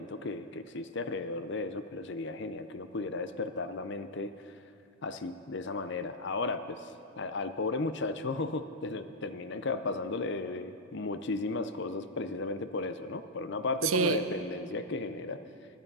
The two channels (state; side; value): normal; both; correlation -0.05